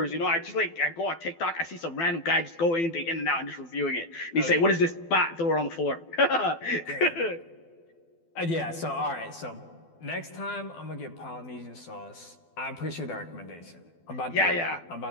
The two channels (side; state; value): right; late; 12 ms